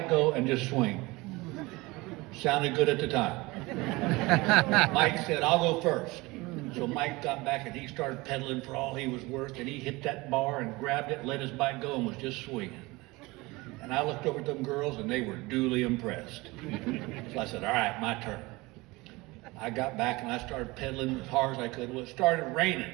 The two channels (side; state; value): left; quieter; 22.5 dB